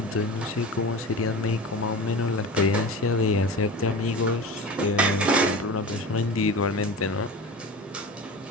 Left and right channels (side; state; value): both; normal; correlation 0.31